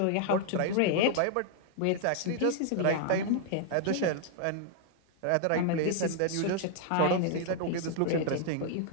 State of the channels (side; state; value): both; different; correlation 0.00